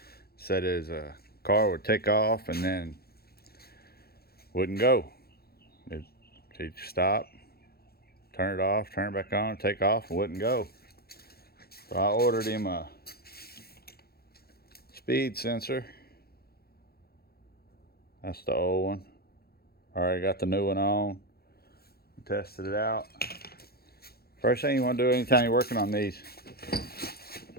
Said his car would take off and then wouldn't go. He'd stop, turn it off, turn it back on, take off, and wouldn't go. So I ordered him a speed sensor. That's the old one. Already got the new one on. Tested it out. First thing you want to do anytime you're working on these,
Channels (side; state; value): right; late; 0.45 ms